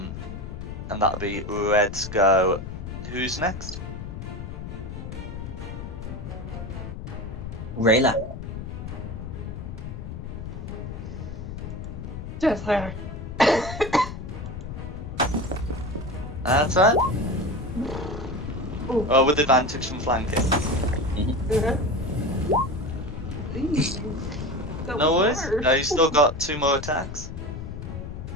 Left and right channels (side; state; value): left; noise; rumble, 8 dB below the sound